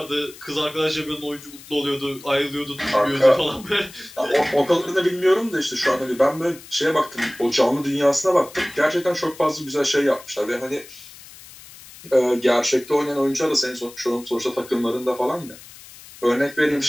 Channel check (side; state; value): left; noise; hiss, 19 dB below the sound